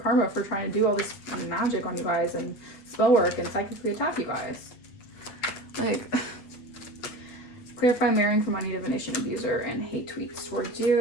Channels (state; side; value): late; right; 8.7 ms